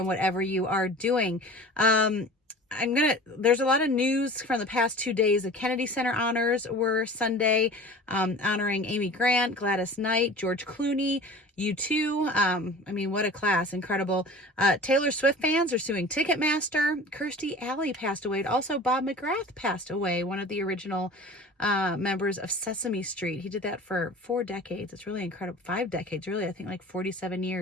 whatever you are doing. There's a lot of news from the past 2 days. The Kennedy Center honors were Sunday, honoring Amy Grant, Gladys Knight, George Clooney, U2. What a class. Incredible. Taylor Swift fans are suing Ticketmaster. Kirstie Alley passed away. Also, Bob McGrath passed away, one of the original members of Sesame Street. He did that for 4 decades. It's really incredible. 5 decades, really. I think like 47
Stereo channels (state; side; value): normal; both; correlation 0.40